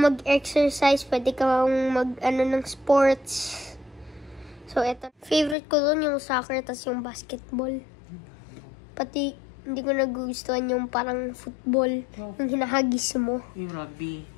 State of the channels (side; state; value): right; drops out; at 5.6 s